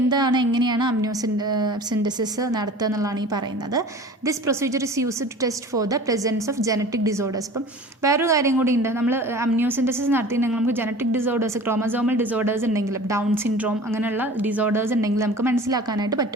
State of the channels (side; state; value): both; normal; correlation 0.41